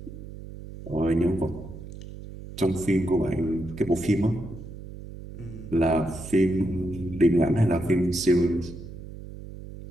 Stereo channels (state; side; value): noise; right; hum, 13 dB below the sound